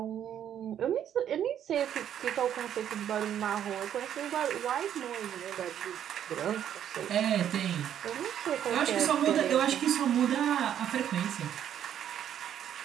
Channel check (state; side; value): quieter; left; 10.0 dB